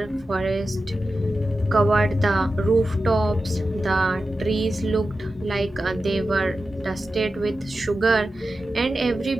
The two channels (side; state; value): both; normal; correlation 0.92